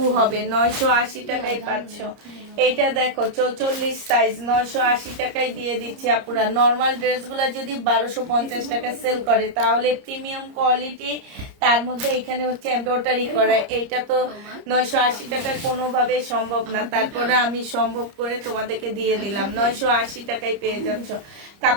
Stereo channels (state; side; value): late; left; 30 ms